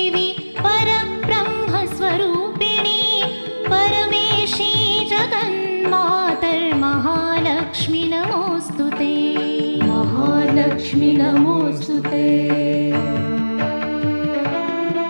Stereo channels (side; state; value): both; inverted; correlation -1.00